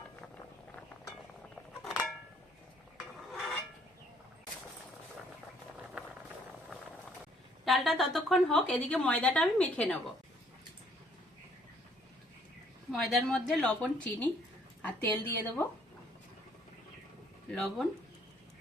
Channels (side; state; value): both; normal; correlation 0.63